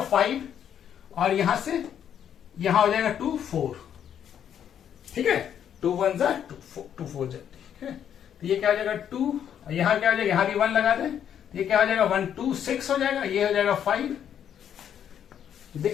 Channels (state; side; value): quieter; right; 9.2 dB